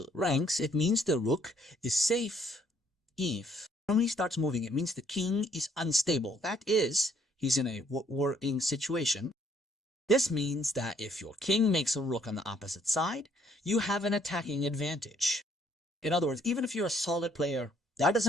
ranks, it means the rook is safe. If when he starts moving, it means the king is unstable. That is, he's in a worrying situation. This means that if your king makes a rook on the opposite side, you have an attacking advantage. In other words, even if you're a solid player, that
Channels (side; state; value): both; normal; correlation 0.66